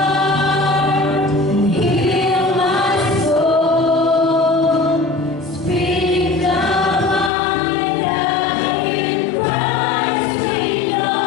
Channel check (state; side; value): drops out; right; at 7.3 s